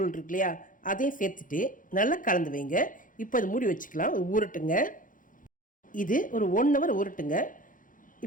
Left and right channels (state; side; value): late; right; 0.39 ms